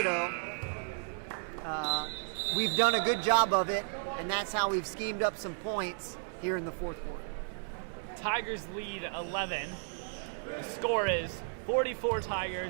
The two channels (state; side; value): silent; left; 55 dB below the other